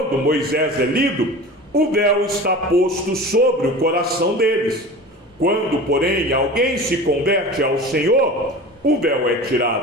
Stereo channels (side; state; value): both; normal; correlation 0.35